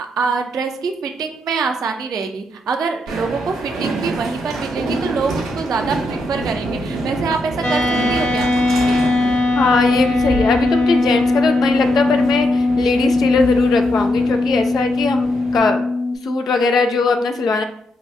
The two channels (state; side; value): normal; both; correlation 0.81